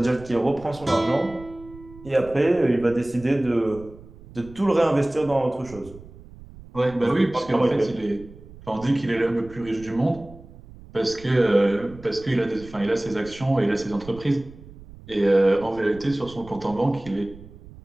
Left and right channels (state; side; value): noise; right; rumble, 19 dB below the sound